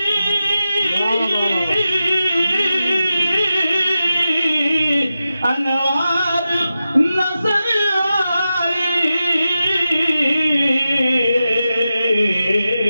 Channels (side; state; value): both; inverted; correlation -0.91